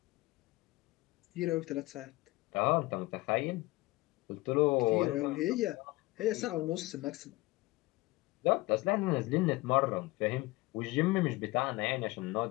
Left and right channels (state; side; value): quieter; right; 21.0 dB